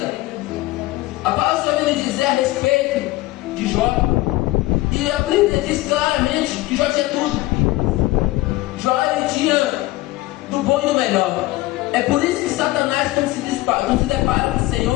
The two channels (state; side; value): quieter; right; 18.8 dB